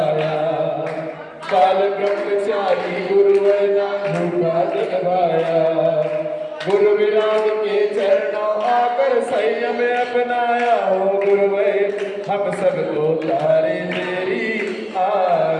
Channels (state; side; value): identical; both; correlation 1.00